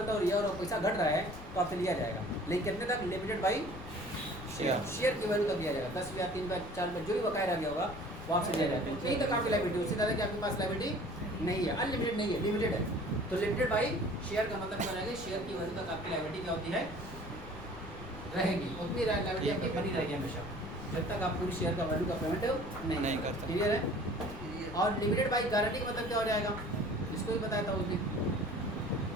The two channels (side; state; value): left; noise; rumble, 13 dB below the sound